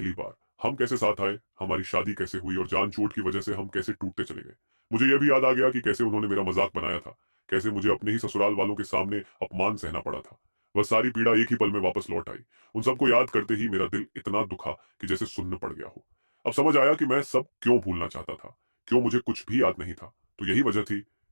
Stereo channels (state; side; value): inverted; both; correlation -1.00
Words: बार, हम कैसे साथ आए, हमारी शादी कैसे हुई और जान चोट की वजह से हम कैसे टूटते चले गए। मुझे यह भी याद आ गया कि कैसे उन्होंने मेरा मजाक बनाया था, कैसे मुझे अपने ही ससुराल वालों के सामने अपमान सहना पड़ा था। वह सारी पीड़ा एक ही पल में वापस लौट आई। उन सबको याद करते ही मेरा दिल इतना दुखा कि जैसे सुन्न पड़ गया हो। अब समझ आया कि मैं सब क्यों भूलना चाहता था, क्यों मुझे कुछ भी याद नहीं था। तो यही वजह थी,